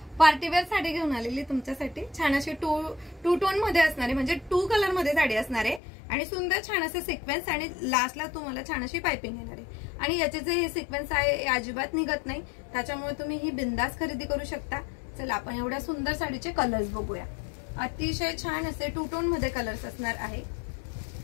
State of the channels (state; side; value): drops out; right; at 5.8 s